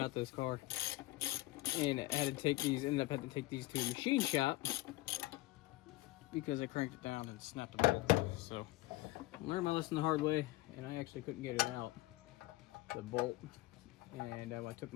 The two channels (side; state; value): right; quieter; 19.0 dB